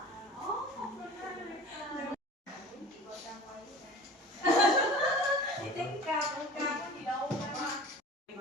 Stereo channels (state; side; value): normal; both; correlation 0.39